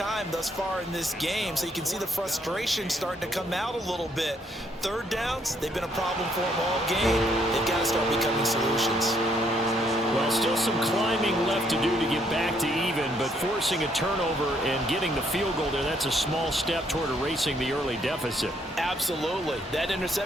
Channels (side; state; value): both; normal; correlation 0.70